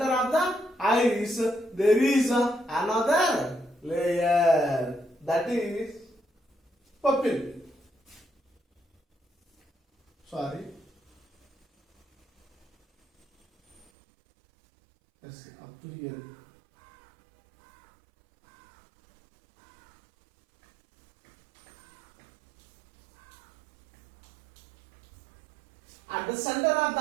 there is another layer, that is pupil. Sorry. Yes, up to here. At the center of the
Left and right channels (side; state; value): left; drops out; at 13.9 s